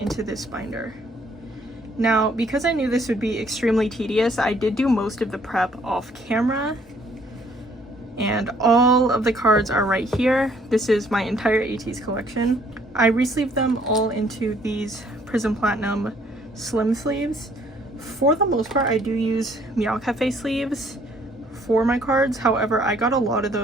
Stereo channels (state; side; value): normal; both; correlation 0.63